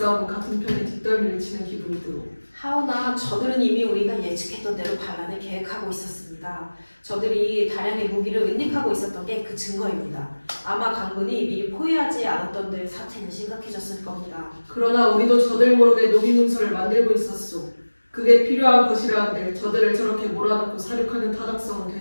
같은 편에 뒷덜미를 치는 기분이 들어. 하오나 저들은 이미 우리가 예측했던 대로 반란을 계획하고 있었습니다. 저들이 다량의 무기를 은닉하고 있었던 게 그 증거입니다. 아마 강군이 미리 포위하지 않았던 데 사태는 심각해졌을 겁니다. 그러나 우리도 저들 모르게 노비 문서를 만들고 있었소. 그게 필요한 것이라 한들 저들을 저렇게 몰아넣고 사륙하는 타당성은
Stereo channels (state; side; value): inverted; both; correlation -1.00